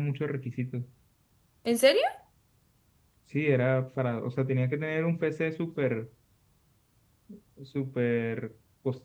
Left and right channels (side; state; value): both; identical; correlation 1.00